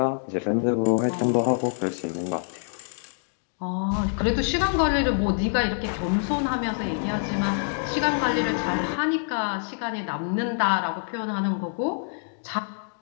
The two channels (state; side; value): silent; right; digital silence